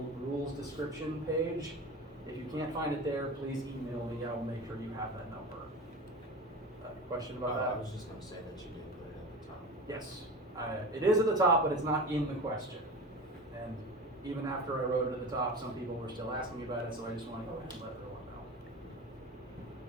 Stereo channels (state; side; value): normal; both; correlation 0.31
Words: rules description page. If you can't find it there, please email me. I will make sure you have that number. Question about that? I was just going to say that you did put it at the top. Yes, it is at the top, but it's not in the question. And even after I wrote it at the top, some people were still asking me about it, so I just want to go ahead and let everyone